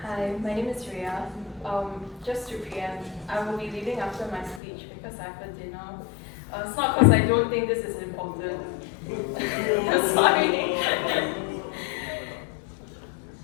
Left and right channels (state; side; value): drops out; right; at 4.6 s